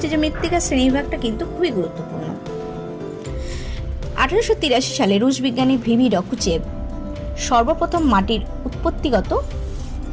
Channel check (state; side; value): identical; both; correlation 1.00